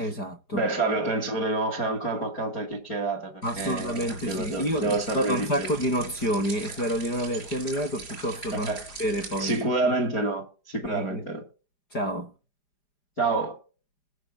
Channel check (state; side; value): late; right; 4.9 ms